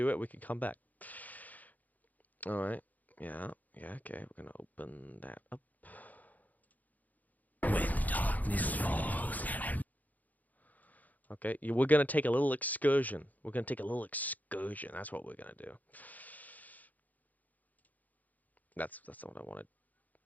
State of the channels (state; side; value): late; right; 0.080 ms